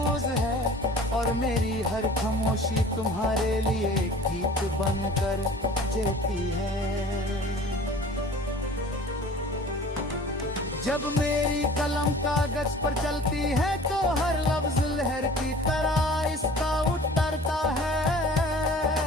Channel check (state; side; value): normal; both; correlation 0.45